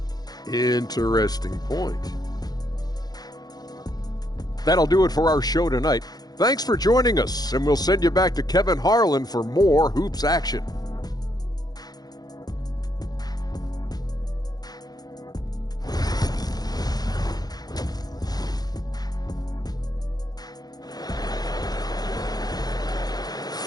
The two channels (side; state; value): right; late; 0.19 ms